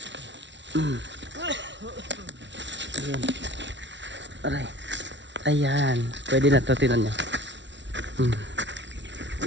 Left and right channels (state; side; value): late; left; 0.52 ms